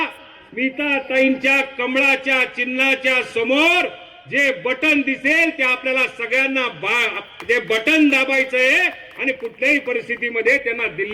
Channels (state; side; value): identical; both; correlation 1.00